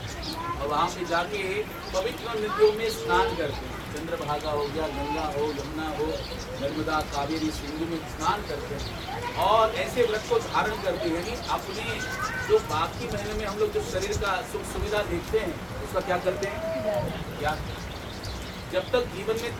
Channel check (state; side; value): identical; both; correlation 1.00